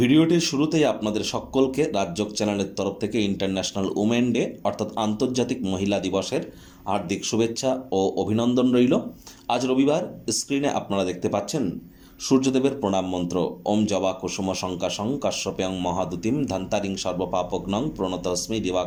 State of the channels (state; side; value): identical; both; correlation 1.00